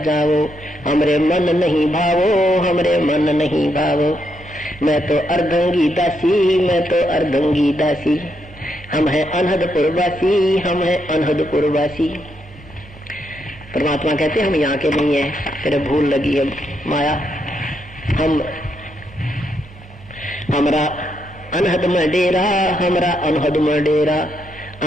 जाओ। हमरे मन नहीं भावो, हमरे मन नहीं भावो। मैं तो अर्धंगी दासी, मैं तो अर्धंगी दासी। हम हैं अनहदपुर वासी, हम हैं अनहदपुर वासी। परमात्मा कहते हम यहाँ के नहीं है, तेरे भूल लगी है माया। हमरा अनहद में डेरा, हमरा अनहद में डेरा,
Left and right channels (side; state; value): both; normal; correlation 0.79